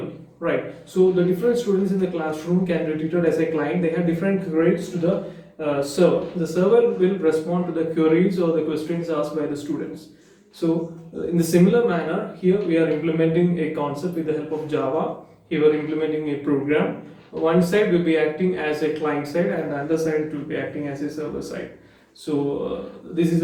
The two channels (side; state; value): both; identical; correlation 1.00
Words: right? So the different students in the classroom can be treated as a client. They have different queries to the server. The server will respond to the queries or the questions asked by the students. So in the similar manner, here we are implementing a concept with the help of Java. Here we are implementing a program. One side will be acting as a client side, and the other side will be acting as a server side. So this is